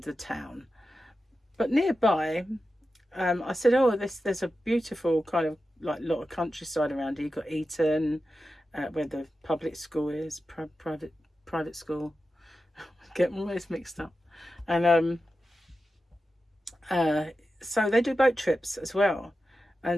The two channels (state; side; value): normal; both; correlation 0.91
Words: the town. But nearby, I said, oh, there's a beautiful kind of like lot of countryside around here. You've got Eton, where the public school is, private school. Get my words mixed up. And so they do boat trips as well.